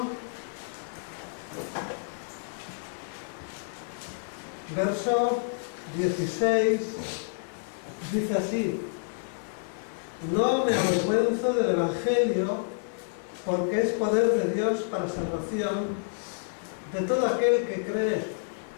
verso 16. Dice así: no me avergüenzo del Evangelio, porque es poder de Dios para salvación de todo aquel que cree,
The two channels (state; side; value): silent; right; digital silence